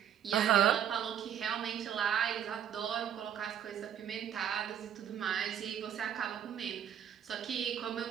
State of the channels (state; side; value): quieter; left; 9.4 dB